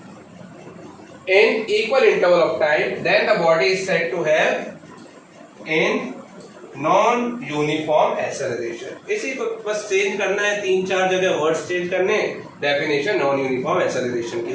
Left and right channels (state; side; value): identical; both; correlation 1.00